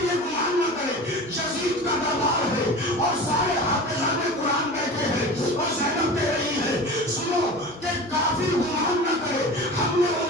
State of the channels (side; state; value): right; noise; hum, 25 dB below the sound